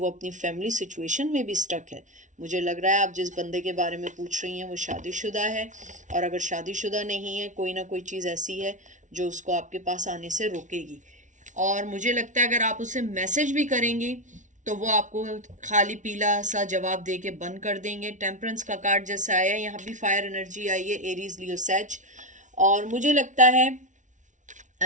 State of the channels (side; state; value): left; late; 0.37 ms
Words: अपनी फैमिली सिचुएशन में भी स्टक है। मुझे लग रहा है आप जिस बंदे के बारे में पूछ रही हैं वो शादीशुदा है, और अगर शादीशुदा नहीं है, कोई ना कोई चीज़ ऐसी है जो उसको आपके पास आने से रोकेगी। और मुझे लगता है अगर आप उसे मैसेज भी करेंगी तो वो आपको खाली पीला सा जवाब दे के बंद कर देंगे। टेम्परेंस का कार्ड जैसा आया है, यहाँ भी फायर एनर्जी आई है, एरीज, लियो, सैज। और मुझे लगता है